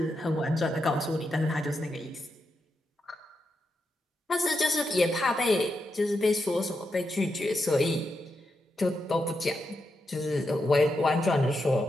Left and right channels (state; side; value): normal; both; correlation 0.85